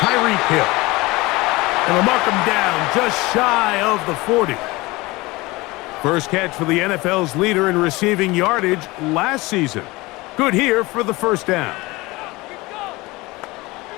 Hill. And they'll mark him down just shy of the 40. First catch for the NFL's leader in receiving yardage last season. Good here for the 1st down.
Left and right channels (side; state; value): right; quieter; 22.0 dB